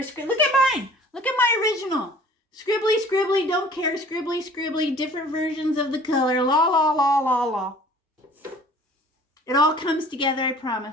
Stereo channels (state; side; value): normal; both; correlation 0.50